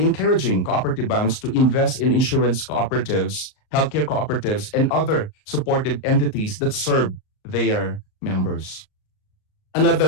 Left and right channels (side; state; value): right; late; 38 ms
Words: cooperative banks to invest in insurance cooperatives, healthcare cooperatives, and other supportive entities that serve their members.